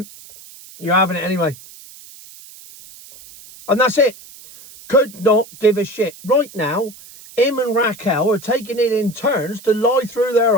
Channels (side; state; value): right; noise; hiss, 20 dB below the sound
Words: you're having it anyway. And that's it. Could not give a shit. Right now, him and Raquel are taking it in turns to lie through their